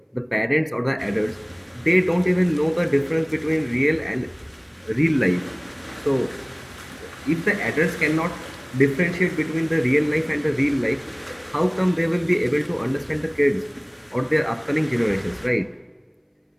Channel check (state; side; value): identical; both; correlation 1.00